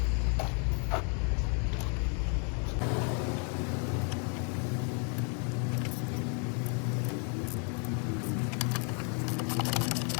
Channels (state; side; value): quieter; right; 38.8 dB